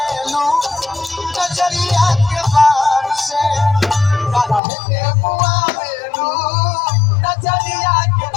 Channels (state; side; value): drops out; right; at 4.6 s